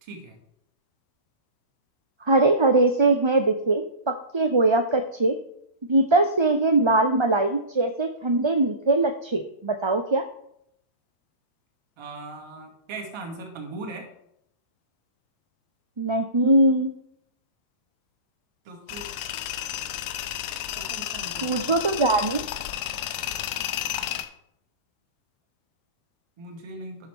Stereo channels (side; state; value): left; late; 1.3 ms